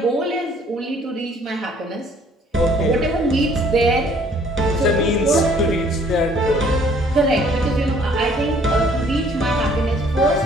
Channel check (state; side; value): normal; both; correlation 0.59